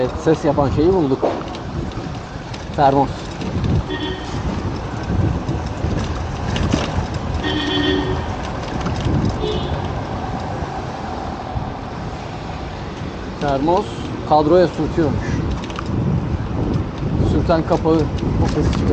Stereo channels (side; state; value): both; identical; correlation 1.00